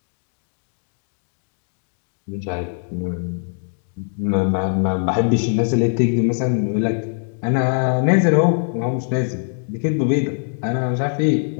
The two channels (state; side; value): silent; right; digital silence